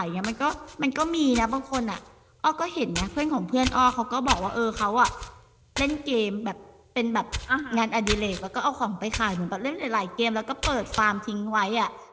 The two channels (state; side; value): identical; both; correlation 1.00